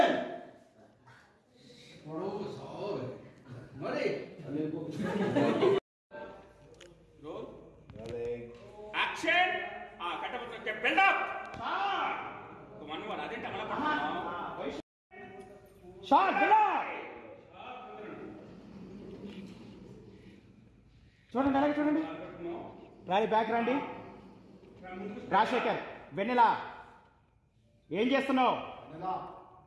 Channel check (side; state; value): both; identical; correlation 1.00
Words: మరి యాక్షన్ కట్టబోతుంటే బిల్డప్ అదేంటి అమల షాట్ బిల్డప్ చూడండి అలాగే చూడండి రాలి బ్యాక్ రండి రాజశేఖర్ వెన్నెలా ఏం చేస్తున్నావు